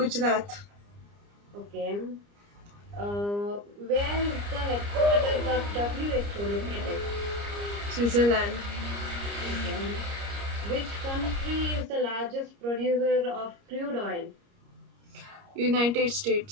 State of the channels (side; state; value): left; late; 30 ms